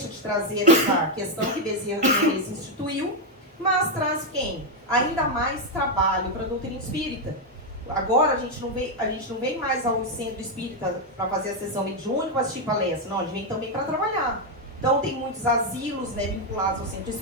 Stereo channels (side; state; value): both; normal; correlation 0.03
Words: de trazer essa questão que Bezerra de Menezes instituiu, mas traz quem? Ainda mais trabalho para a doutrina espírita. Agora a gente não vem mais ao centro espírita para fazer a sessão mediúnica, para assistir palestra. Não, a gente vem também para trabalhar. Então tem muitos asilos, né, vinculados ao centro